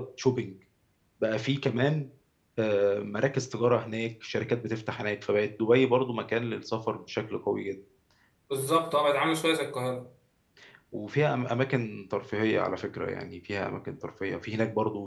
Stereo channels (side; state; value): both; identical; correlation 1.00